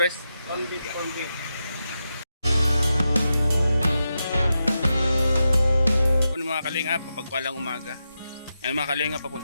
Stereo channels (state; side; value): inverted; both; correlation -0.88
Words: Kung mga kalingap, papagpalang umaga. Yan mga kalingap,